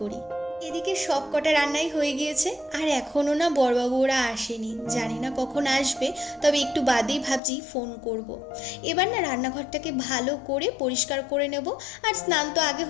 এদিকে সব কটা রান্নাই হয়ে গিয়েছে, আর এখনও না বড়বাবু ওরা আসেনি, জানি না কখন আসবে, তবে একটু বাদেই ভাবছি ফোন করব। এবার না রান্নাঘরটাকে ভালো করে পরিষ্কার করে নেব, আর স্নান তো আগে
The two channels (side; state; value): right; drops out; at 7.4 s